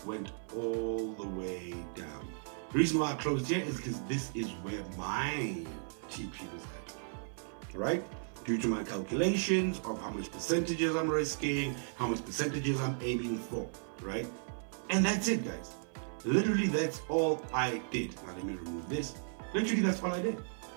went all the way down. The reason why I closed here is because this is where my TP was at, right? Due to my calculations of how much percentages I'm risking, how much percentages I'm aiming for, right? And that's it, guys. Literally, that's all I did. Now let me remove this. Literally, that's all I did.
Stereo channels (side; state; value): left; silent; 54 dB below the other